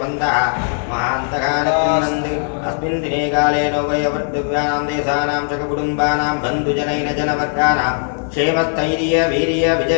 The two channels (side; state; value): right; silent; digital silence